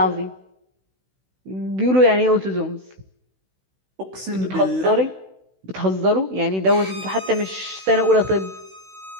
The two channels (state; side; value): late; left; 16 ms